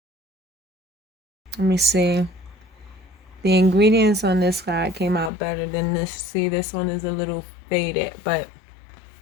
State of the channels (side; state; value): right; drops out; at 5.3 s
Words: Let me see. The ingredients on this side came out better than this. See, this one is a little faded, but